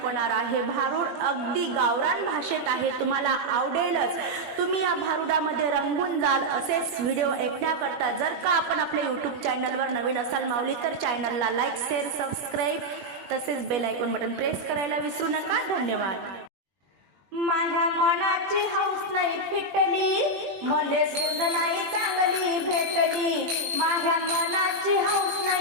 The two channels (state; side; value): late; left; 21 ms